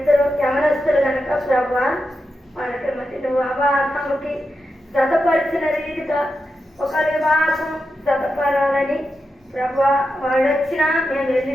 యమనస్తులు కనుక ప్రభా వాళ్ళకి మరి నువ్వు అవాహముకి జతపరిచిన రీతిగా ఒక వివాహం జతపరాలని ప్రభా వాళ్ళు వచ్చినా మేము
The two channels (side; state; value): both; normal; correlation 0.88